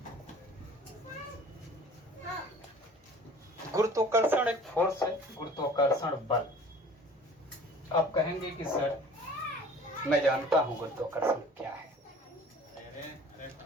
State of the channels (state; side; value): normal; both; correlation 0.47